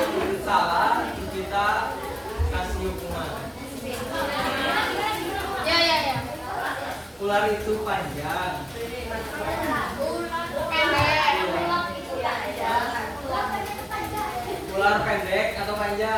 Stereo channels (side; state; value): both; identical; correlation 1.00